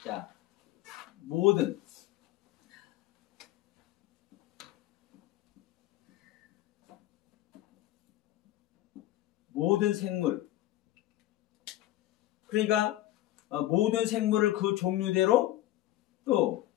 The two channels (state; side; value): quieter; right; 15.0 dB